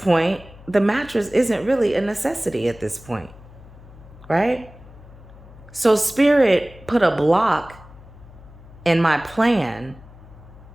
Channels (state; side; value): noise; left; hum, 20 dB below the sound